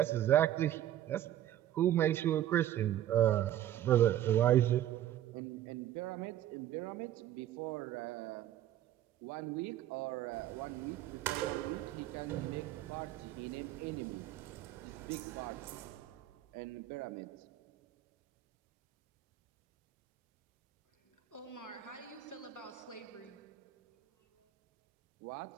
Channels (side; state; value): left; quieter; 12.3 dB